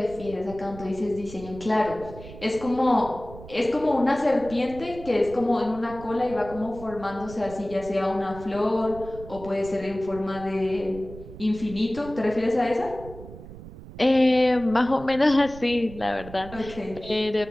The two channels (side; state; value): right; noise; rumble, 15 dB below the sound